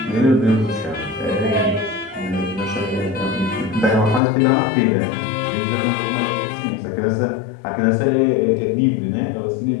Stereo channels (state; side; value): drops out; right; at 4.2 s